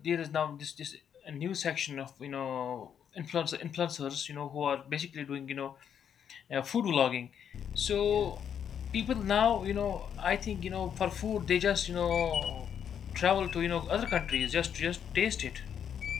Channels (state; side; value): quieter; right; 8.4 dB